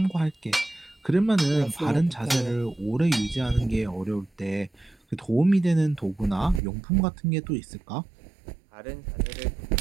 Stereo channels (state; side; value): drops out; left; at 6.6 s